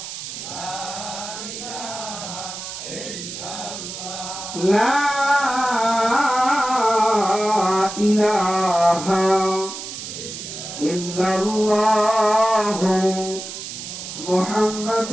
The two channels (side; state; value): right; noise; hiss, 9 dB below the sound